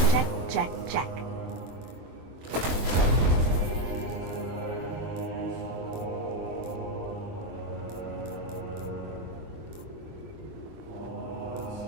Check, check, check.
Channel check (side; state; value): left; late; 23 ms